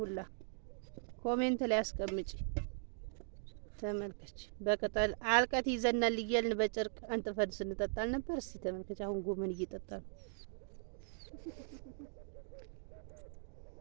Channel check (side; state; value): left; silent; digital silence